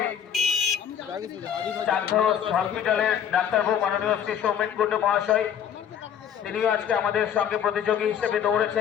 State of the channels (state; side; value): quieter; right; 8.9 dB